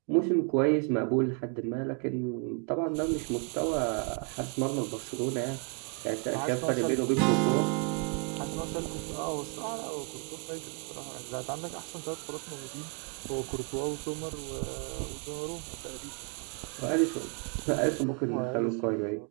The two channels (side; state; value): left; quieter; 38.0 dB